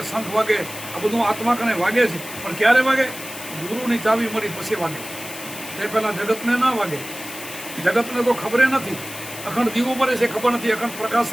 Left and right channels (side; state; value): left; noise; hiss, 12 dB below the sound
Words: શંખ વાગે, આ બધું આત્મા કણે વાગે છે. પણ ક્યારે વાગે? ગુરુની ચાવી મળી પછી વાગે. તે પહેલાં જગતને ના વાગે. જગતને તો ખબર નથી. અખંડ દીવો મરે છે ખબર નથી, અખંડ પ્રકાશ